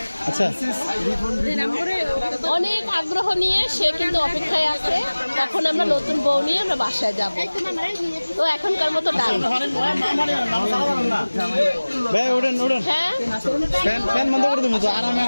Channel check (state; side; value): inverted; both; correlation -1.00